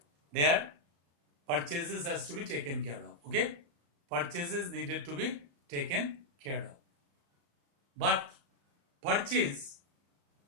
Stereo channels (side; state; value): left; late; 35 ms